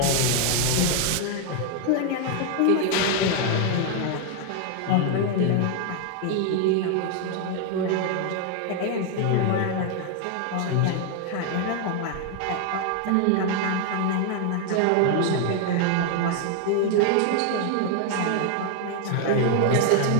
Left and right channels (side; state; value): both; different; correlation 0.00